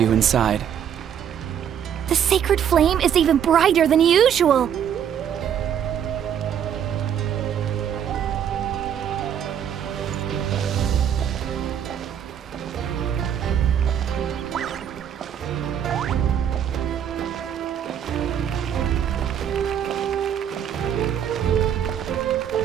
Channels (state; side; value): quieter; left; 9.0 dB